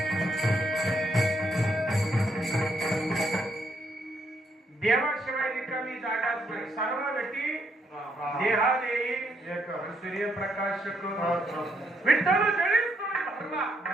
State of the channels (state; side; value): normal; both; correlation 0.74